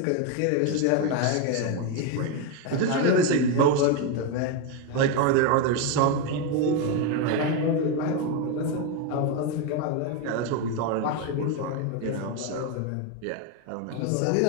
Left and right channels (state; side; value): different; both; correlation 0.02